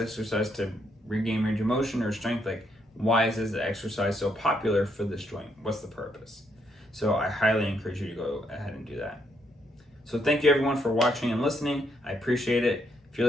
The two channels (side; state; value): both; normal; correlation 0.75